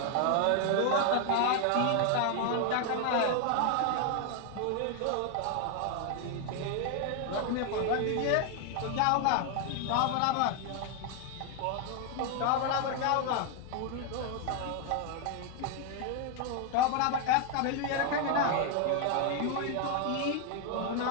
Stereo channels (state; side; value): different; both; correlation 0.01